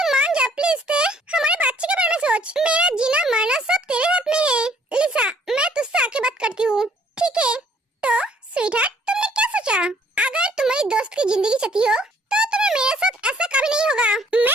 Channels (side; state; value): both; normal; correlation 0.60